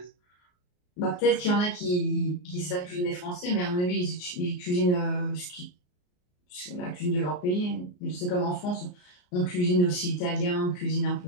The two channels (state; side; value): late; right; 34 ms